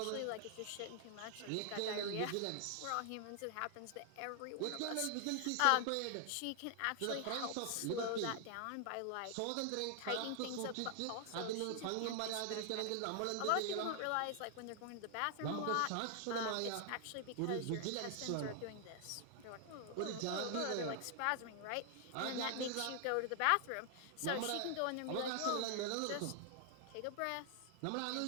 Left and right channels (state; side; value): different; both; correlation 0.00